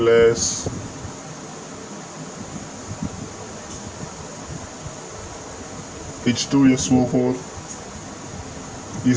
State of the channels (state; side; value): identical; both; correlation 1.00